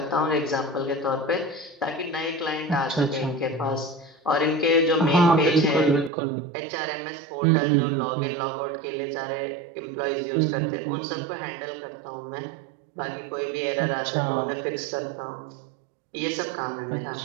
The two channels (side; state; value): left; drops out; at 6.1 s